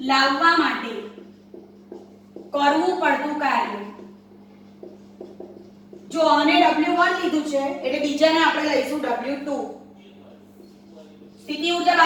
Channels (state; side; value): identical; both; correlation 1.00